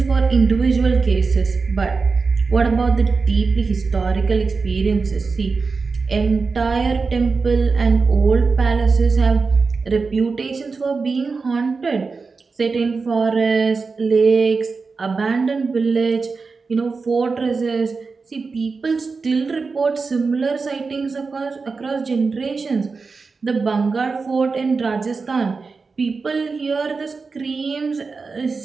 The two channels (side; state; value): left; quieter; 4.5 dB